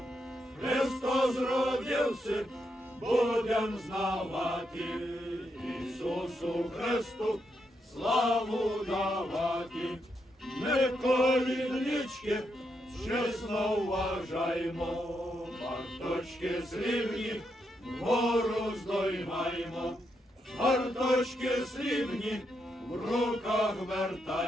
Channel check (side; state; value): both; normal; correlation 0.81